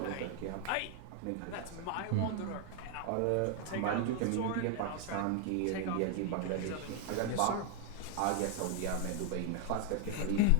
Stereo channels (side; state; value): both; different; correlation 0.00